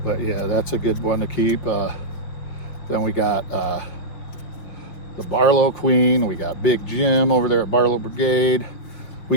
But yeah, that's a good one to keep. Then we got the Barlow Queen. We got Big Jim over there at Barlow Brigade. We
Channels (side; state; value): right; late; 5.7 ms